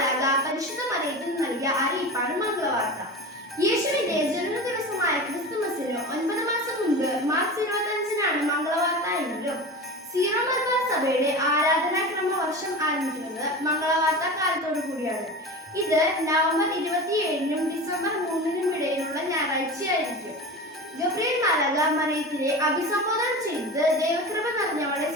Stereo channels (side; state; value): both; normal; correlation 0.30